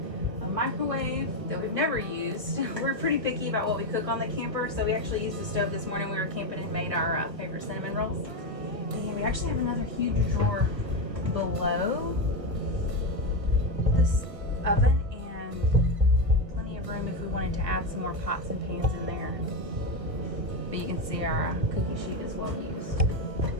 A microwave that we've never used. We're pretty picky about what we cook on the camper, so we actually used the stove this morning. We were camping and made our favorite cinnamon rolls. And we actually have another huge drawer below this oven, and plenty of room if we wanted to add some more pots and pans in there. But you can see our cookie sheet is well used.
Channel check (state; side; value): late; left; 1.5 ms